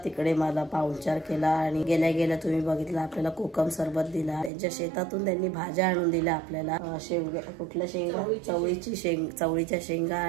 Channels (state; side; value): drops out; left; at 4.5 s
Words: तिकडे मला पाहुणचार केला। आणि गेल्या गेल्या तुम्ही बघितलं, आपल्याला कोकम सरबत दिला। त्यांच्या शेतातून त्यांनी भाज्या आणून दिल्या आपल्याला, कुठल्या शेंगा, चवळीच्या शेंगा